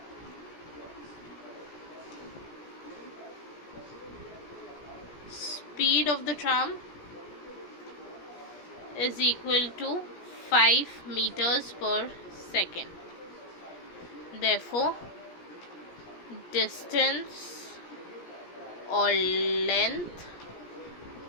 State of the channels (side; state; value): right; late; 17 ms